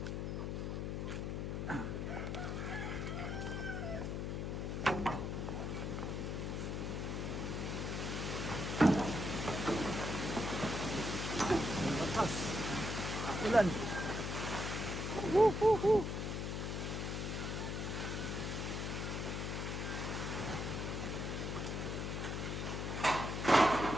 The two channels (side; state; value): left; noise; hum, 2 dB below the sound